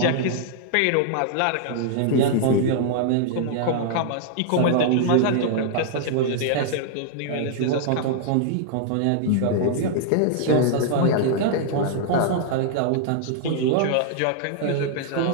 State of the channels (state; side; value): different; both; correlation -0.01